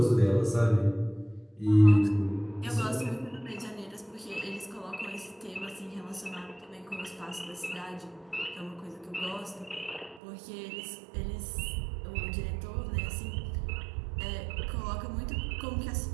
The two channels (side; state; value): left; drops out; at 10.2 s